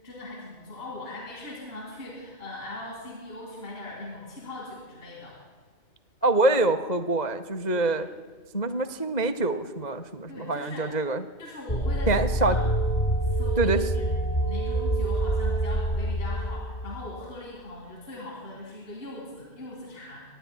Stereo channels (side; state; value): right; late; 2.0 ms